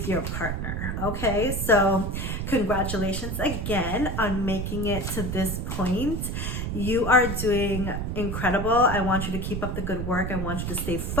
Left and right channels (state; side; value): noise; right; rumble, 3 dB below the sound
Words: your partner, okay? So congratulations again on making it to this point. You are doing incredible. I want you to keep up the good work. I want you to stay